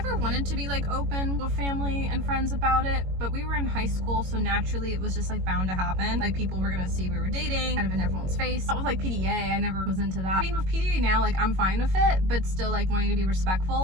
wanted to be like open with family and friends about it, but we were in high school, so naturally it was just like bound to happen. Like people were gonna see we were dating kind of in everyone's face. That was like PDA, I never was into that. I mean with PDA now, like I'm fine with it, but still like wanting to be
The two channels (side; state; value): left; late; 22 ms